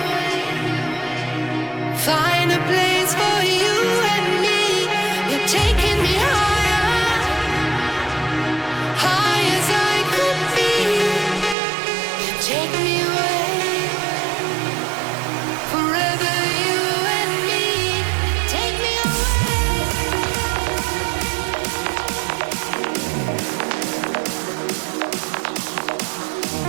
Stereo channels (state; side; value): drops out; left; at 11.6 s